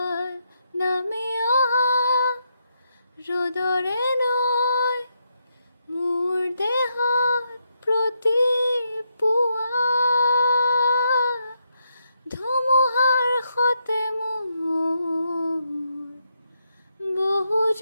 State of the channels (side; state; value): both; inverted; correlation -0.81